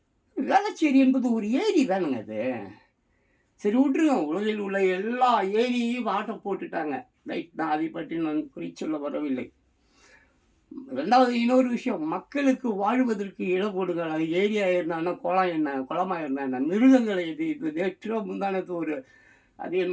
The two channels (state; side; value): identical; both; correlation 1.00